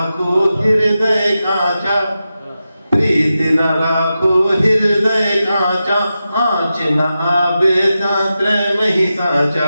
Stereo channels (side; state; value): both; inverted; correlation -0.91